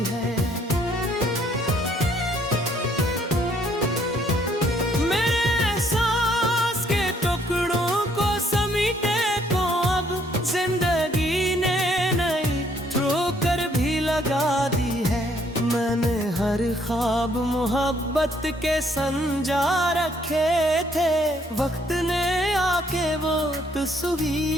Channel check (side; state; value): both; normal; correlation 0.66